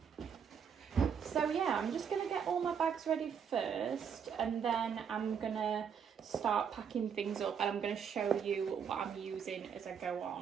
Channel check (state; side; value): quieter; left; 7.4 dB